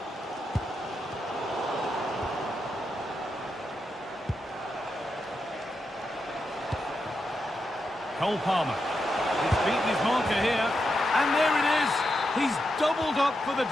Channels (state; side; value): normal; both; correlation 0.86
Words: Cole Palmer. He's beaten his marker here. And there it is. He's doubled up for the